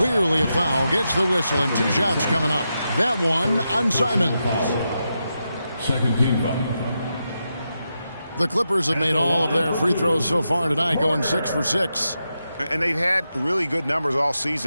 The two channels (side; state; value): both; inverted; correlation -0.87